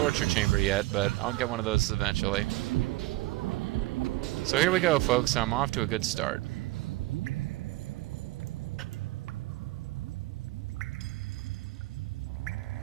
chamber yet, but I'll get one of those eventually. So here we go, folks. I'm off to a good start.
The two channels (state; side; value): quieter; left; 19.4 dB